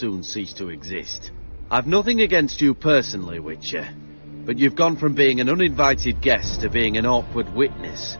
cease to exist. I've nothing against you personally, Witcher, but you've gone from being an uninvited guest to being an awkward witness.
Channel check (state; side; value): inverted; both; correlation -1.00